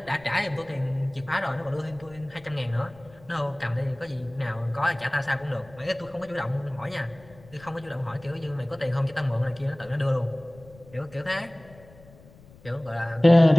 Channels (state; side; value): noise; left; rumble, 23 dB below the sound